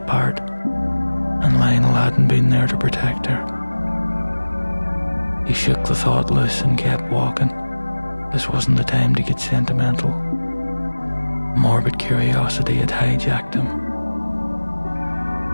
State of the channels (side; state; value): both; inverted; correlation -1.00